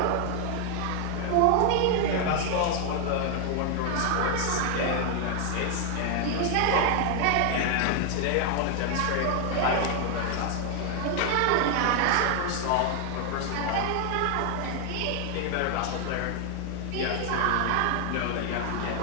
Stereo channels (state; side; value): different; both; correlation 0.00